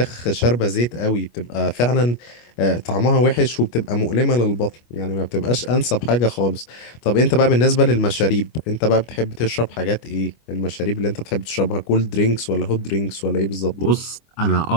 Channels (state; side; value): late; right; 25 ms